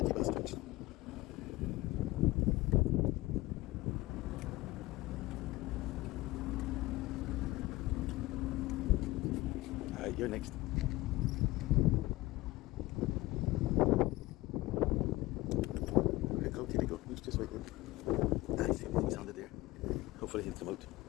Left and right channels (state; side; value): quieter; right; 18.9 dB